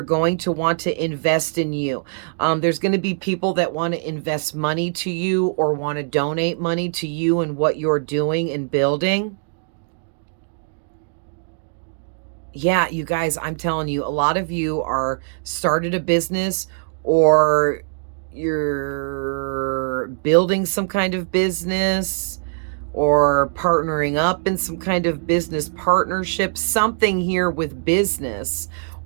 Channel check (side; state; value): left; silent; digital silence